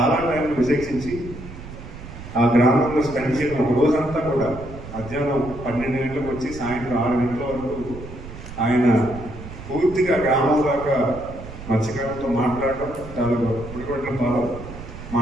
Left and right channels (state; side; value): noise; right; rumble, 13 dB below the sound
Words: టైంలో విశేషించి ఆ గ్రామంలో స్పెండ్ చేయడం, ఒక రోజంతా కూడా మధ్యాహ్నం 12 గంటలకు వచ్చి సాయంత్రం 6 గంటల వరకు ఆయన పూర్తిగా గ్రామం దాకా మత్స్యకారులతో మాట్లాడడం, తాలూకా పుడిగొడ్లతో